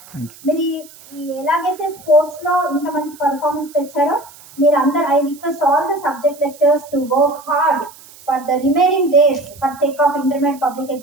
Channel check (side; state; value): right; noise; hiss, 22 dB below the sound